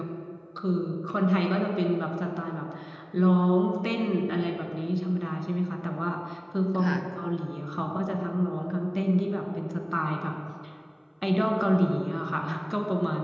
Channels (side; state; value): both; identical; correlation 1.00